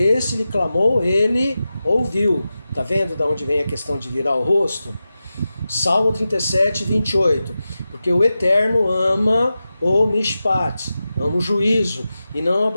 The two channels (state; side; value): inverted; both; correlation -0.93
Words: lhe clamou, ele ouviu. Está vendo de onde vem a questão de virar o rosto? Salmo 37:28. Porque o Eterno ama o mishpat, ama o juízo, e não